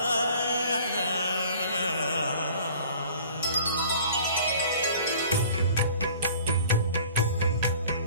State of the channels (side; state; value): both; inverted; correlation -0.49